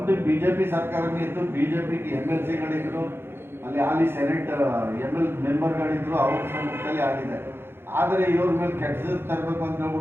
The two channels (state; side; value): late; left; 0.11 ms